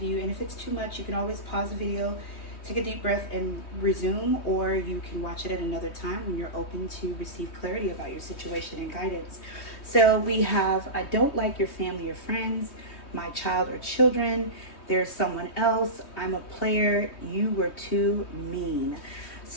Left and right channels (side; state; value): right; late; 3.2 ms